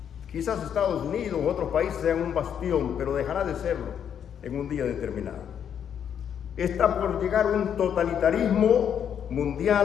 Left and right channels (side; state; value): right; quieter; 8.6 dB